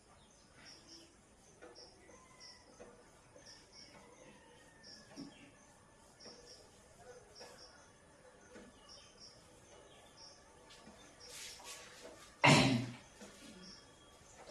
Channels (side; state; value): both; identical; correlation 1.00